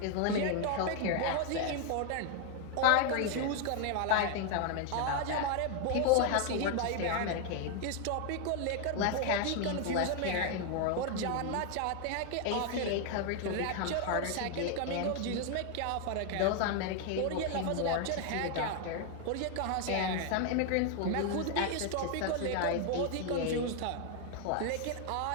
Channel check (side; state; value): both; different; correlation 0.01